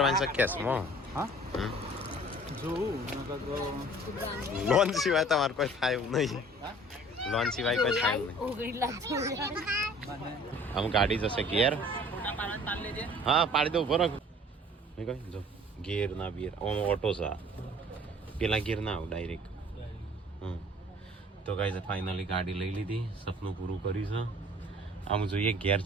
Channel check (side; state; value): both; normal; correlation 0.50